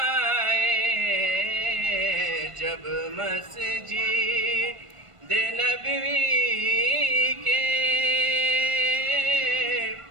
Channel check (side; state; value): left; late; 1.5 ms